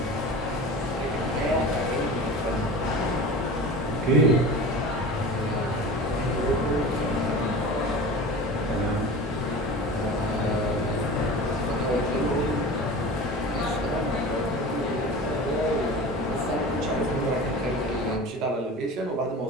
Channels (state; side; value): normal; both; correlation 0.35